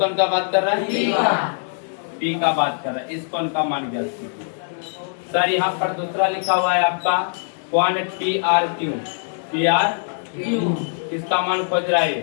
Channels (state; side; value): silent; right; digital silence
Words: का बात कर रहा है? P का बात कर रहा है। इस कोण का मान ज्ञात कीजिए। सर यहाँ पर दूसरा लिखा हुआ है आपका कोण PRQ। PR किसका मान खोज रहा है?